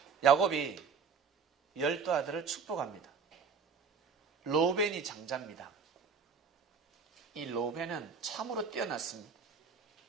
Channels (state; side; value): quieter; left; 5.8 dB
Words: 야곱이 12아들을 축복합니다. 로벤이 장자입니다. 이 로벤은 참으로 뛰어났습니다.